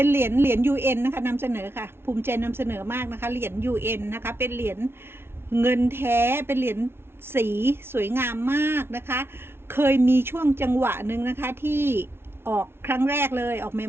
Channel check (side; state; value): left; late; 0.12 ms